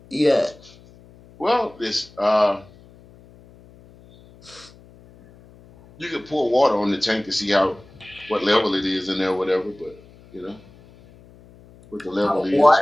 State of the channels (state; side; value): noise; left; hum, 25 dB below the sound